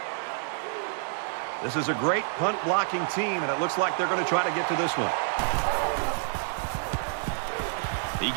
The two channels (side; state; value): left; silent; 59 dB below the other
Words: This is a great punt blocking team, and it looks like they're going to try to get to this one. He